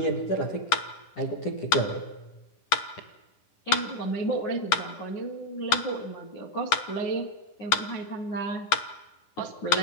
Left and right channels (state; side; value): late; right; 10 ms